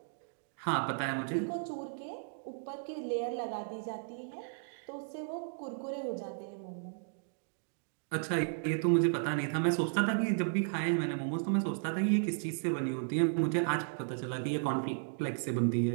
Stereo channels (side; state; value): left; silent; digital silence